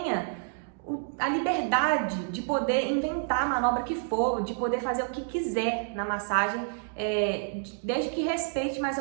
a liberdade de poder inventar a manobra que for, de poder fazer o que quiser na massagem, desde que respeite mais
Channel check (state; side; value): silent; left; digital silence